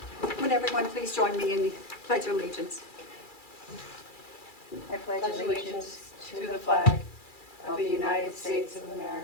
Would everyone please join me in the Pledge of Allegiance? I pledge allegiance to the flag of the United States of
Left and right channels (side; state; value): right; late; 2.3 ms